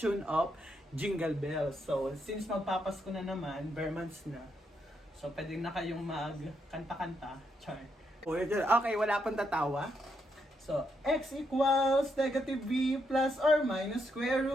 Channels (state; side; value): normal; both; correlation 0.79